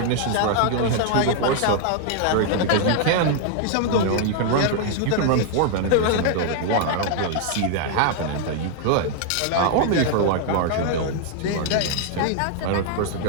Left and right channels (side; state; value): both; different; correlation 0.00